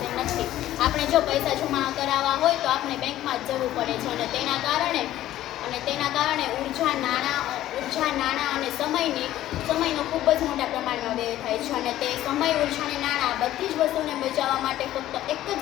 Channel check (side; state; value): right; quieter; 13.7 dB